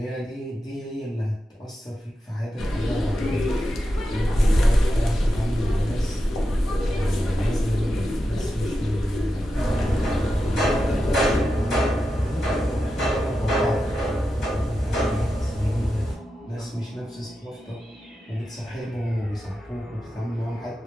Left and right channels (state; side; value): normal; both; correlation 0.90